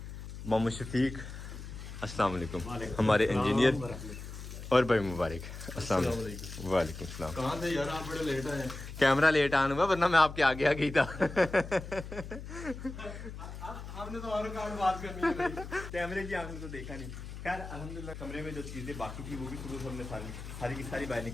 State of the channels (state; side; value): noise; left; hum, 10 dB below the sound